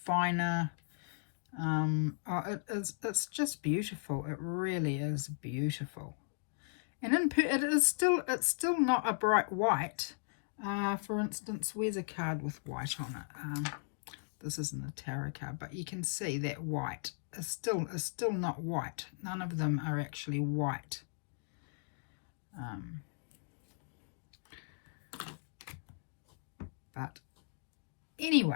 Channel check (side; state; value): right; silent; digital silence